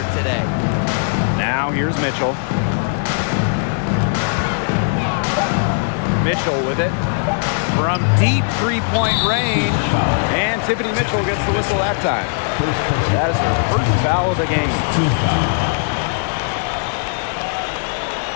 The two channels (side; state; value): right; silent; digital silence